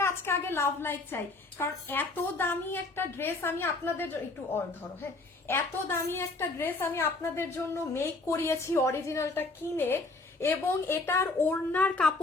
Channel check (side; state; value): right; quieter; 3.3 dB